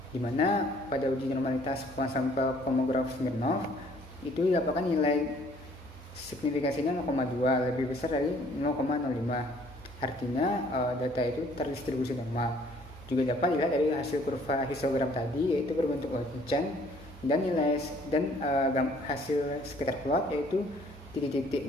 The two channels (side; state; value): both; normal; correlation 0.60